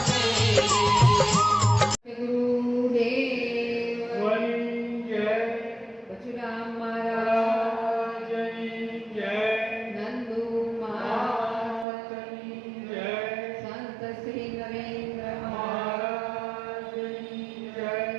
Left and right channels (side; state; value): left; drops out; at 11.9 s